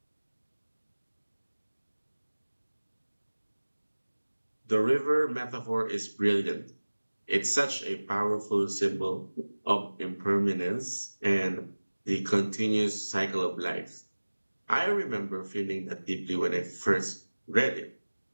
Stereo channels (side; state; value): both; inverted; correlation -1.00